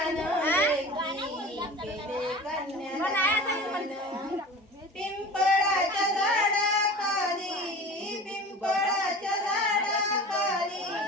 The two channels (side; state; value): both; normal; correlation 0.38